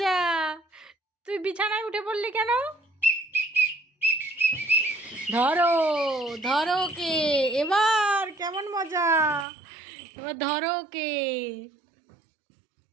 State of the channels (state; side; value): drops out; left; at 9.5 s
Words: তুই বিছানায় উঠে পড়লি কেন? ধরো ধরো কে, এবার কেমন মজা, এবার ধরো কে।